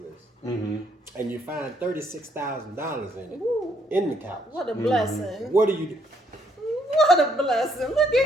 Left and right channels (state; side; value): normal; both; correlation 0.70